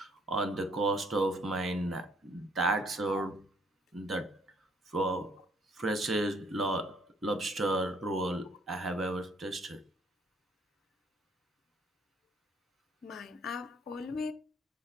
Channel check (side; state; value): both; normal; correlation 0.64